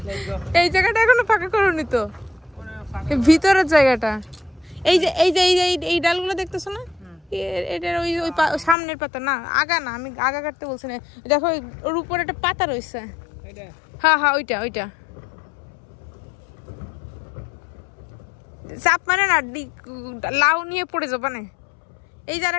এই জায়গাটা এখনো ফাঁকা করোনি তো, এই ভিতরের জায়গাটা। এই ডালগুলো দেখতেছো না, এটার ওই সামনের পাতা না, আগা না, আমি আগা কাটতে বলছি না। দেখো ওর উপরে একটা পাতা রয়েছে। হ্যাঁ ওইটা চাপ মানে না, লাউ নিয়ে পড়ে যাবা না। এই যে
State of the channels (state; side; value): drops out; right; at 8.8 s